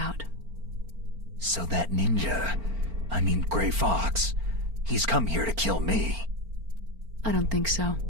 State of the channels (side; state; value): left; late; 4.4 ms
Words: So that ninja, I mean Grey Fox, he's come here to kill me. I don't think so.